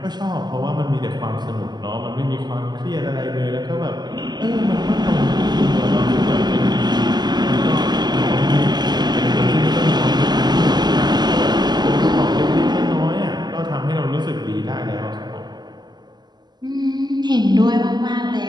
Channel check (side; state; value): left; late; 0.21 ms